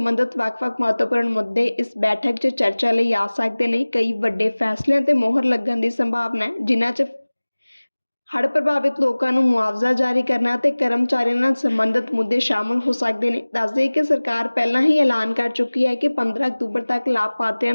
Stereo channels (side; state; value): both; inverted; correlation -1.00